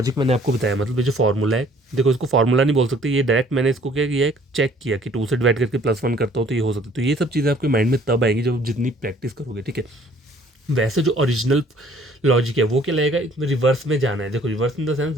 मैंने आपको बताया, मतलब ये जो फॉर्मूला है, देखो इसको फॉर्मूला नहीं बोल सकते, ये डायरेक्ट मैंने इसको क्या किया है, चेक किया कि 2 से डिवाइड करके प्लस 1 करता हूँ तो ये हो सकता है। तो ये सब चीज़ें आपके माइंड में तब आएंगी जब जितनी प्रैक्टिस करोगे। ठीक है, वैसे जो ओरिजिनल लॉजिक है वो क्या लगेगा, इसमें रिवर्स में जाना है। देखो रिवर्स इन द सेंस,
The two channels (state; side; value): normal; both; correlation 0.58